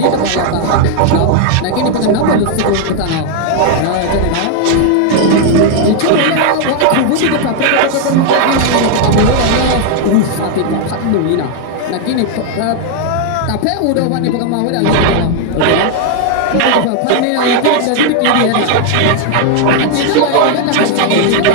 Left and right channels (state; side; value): different; both; correlation 0.00